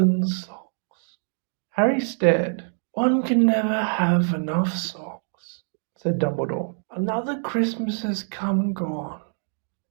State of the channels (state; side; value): silent; left; 59 dB below the other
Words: socks. Harry stared. One can never have enough socks, said Dumbledore. Another Christmas has come and gone,